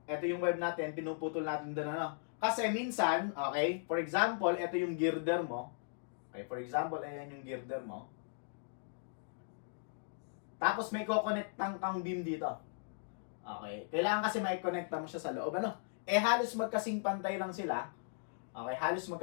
ito yung web natin, pinuputol natin doon, ano? Kasi minsan, okay, for example, ito yung girder mo. Okay, for example, ayan yung girder mo. Tapos may ko-connectang kang beam dito. Okay, kailangan kasi mai-connecta mo siya sa loob, ano? Halos magkasing pantay lang sila. Okay, halos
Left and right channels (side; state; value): right; silent; digital silence